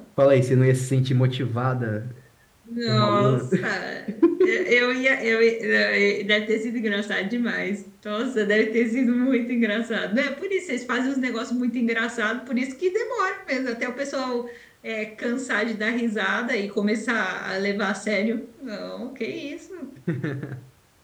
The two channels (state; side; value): identical; both; correlation 1.00